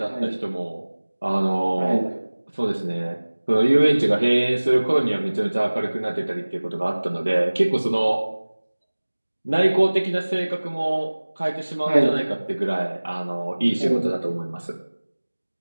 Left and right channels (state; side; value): inverted; both; correlation -1.00